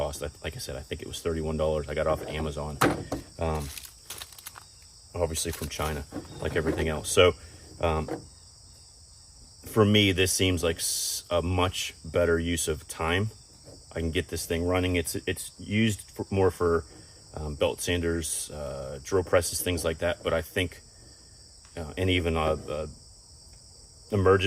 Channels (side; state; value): both; identical; correlation 1.00